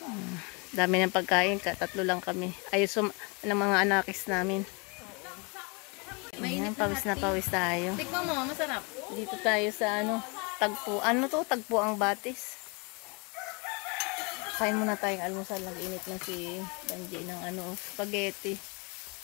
Dami ng pagkain, 3 lang kami. Ayos ng mga anakis namin. Ayan, pawis na pawis tayo. Tikman mo, masarap. Dito tayo sa ano, tagpo. Ano to? Tagpo ang batis. Kain muna tayong almusal. Nag-init na si Banji ng ano, spaghetti.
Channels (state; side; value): quieter; right; 31.2 dB